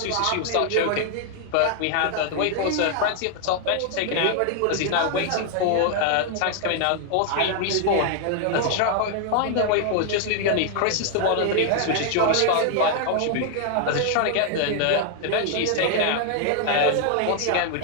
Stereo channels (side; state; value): both; different; correlation 0.00